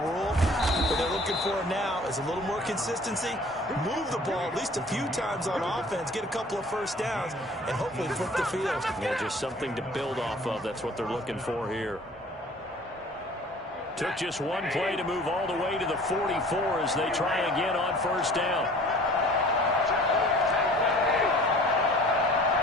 What they're looking for now is a little more consistency, move the ball at least a few times on offense, get a couple of first downs, and hopefully flip the field. Yeah, just something to build off of. That's what they're looking for here. Took just one play to move all the way to the 44 as they try again on 1st down.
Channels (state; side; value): normal; both; correlation 0.49